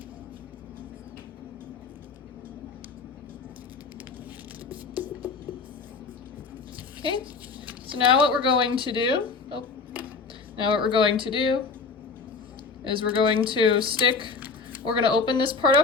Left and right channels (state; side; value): quieter; right; 4.7 dB